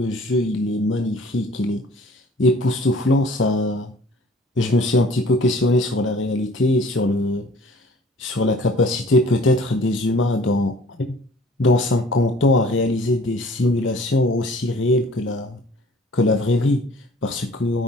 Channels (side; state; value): both; normal; correlation 0.51